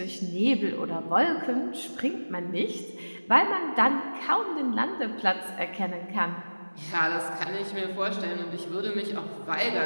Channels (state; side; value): inverted; both; correlation -1.00